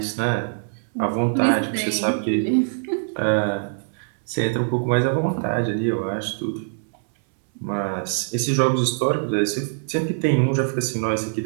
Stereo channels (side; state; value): left; silent; 63 dB below the other